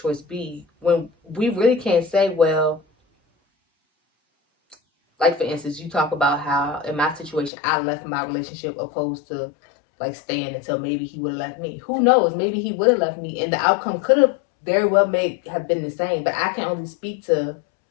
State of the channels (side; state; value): right; drops out; at 7.5 s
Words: B. When we really can't say, well, like, for instance, you talk about how in my situation I left my relationship opposed to like staying until maybe he would have left me. Who knows? Maybe he would have left me and the outcome could have very well have been the same. But I can only speak to